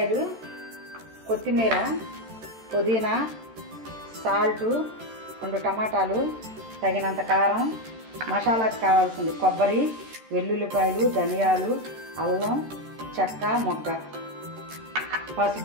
కొత్తిమీర, పుదీనా, సాల్టు, 2 టమాటాలు, తగినంత కారం, మసాలాకు కావాల్సింది కొబ్బరి, వెల్లుల్లిపాయలు, ధనియాలు, అల్లం, చెక్క, మొగ్గ,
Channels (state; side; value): late; left; 13 ms